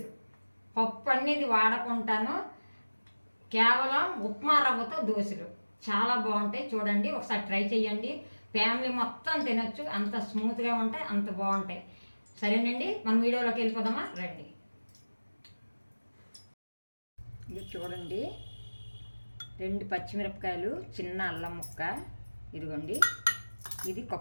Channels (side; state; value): both; inverted; correlation -1.00